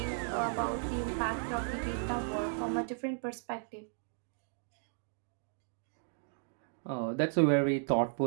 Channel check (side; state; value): left; silent; digital silence